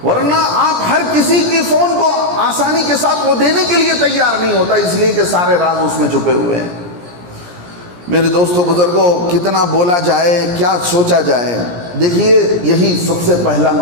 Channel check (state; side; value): late; left; 17 ms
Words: ورنہ آپ ہر کسی کی فون کو آسانی کے ساتھ وہ دینے کے لیے تیار نہیں ہوتا, اس لیے کہ سارے راز اس میں چھپے ہوئے ہیں. میرے دوستو بزرگوں, کتنا بولا جائے, کیا سوچا جائے. دیکھیے یہی سب سے پہلا